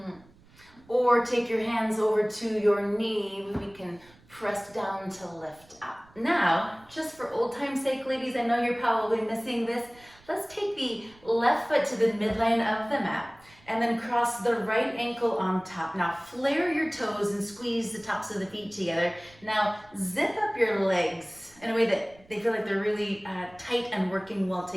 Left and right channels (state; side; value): noise; right; rumble, 27 dB below the sound